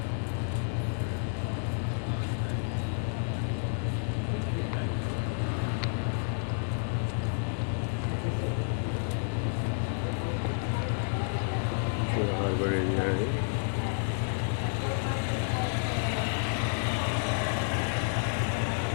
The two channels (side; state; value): right; silent; digital silence